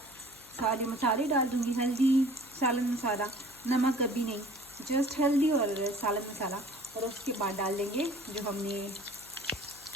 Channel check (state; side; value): noise; left; hum, 25 dB below the sound